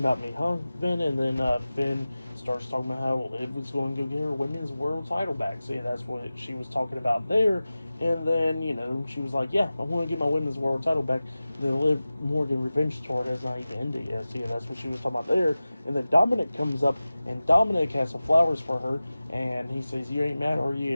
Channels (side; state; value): both; inverted; correlation -0.97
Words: me, huh, Finn?" And then Finn starts talking about how Liv was going to go get her women's world title back. So yeah, that's what she was talking about there. And then, she was like, "Yeah, I want to get my women's world title back." The Liv Morgan revenge tour has not even ended yet. So yeah, that's what she was talking about there. And then Dominic comes up, and Dominic has some flowers for her, and he says, "You ain't mad, are